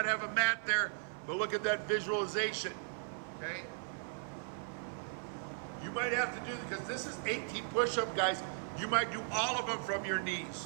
have a mat there, but look at that visualization, okay? You might have to do, because this is 18 push-up, guys. You might do all of them from your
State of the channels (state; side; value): silent; left; 53 dB below the other